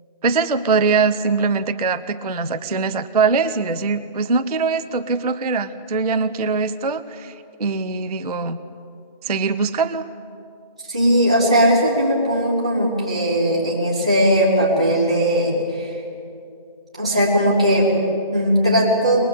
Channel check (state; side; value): inverted; both; correlation -0.38